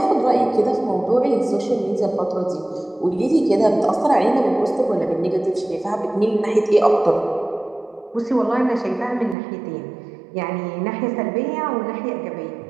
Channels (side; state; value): left; drops out; at 9.3 s